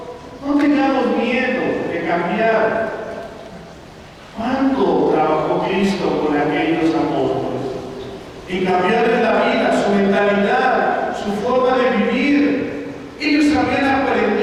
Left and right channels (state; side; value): identical; both; correlation 1.00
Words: No tengamos miedo de cambiar. ¿Cuánto trabajó Cristo con aquellos apóstoles? En cambiarles la vida, su mentalidad, su forma de vivir. Ellos habían